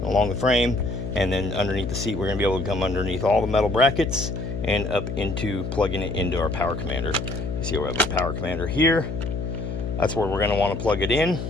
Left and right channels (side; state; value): left; noise; hum, 5 dB below the sound